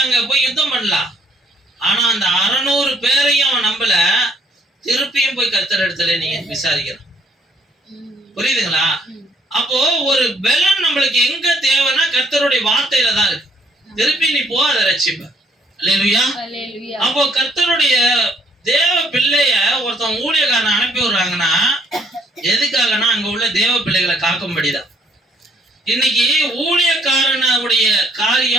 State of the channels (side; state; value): both; normal; correlation 0.65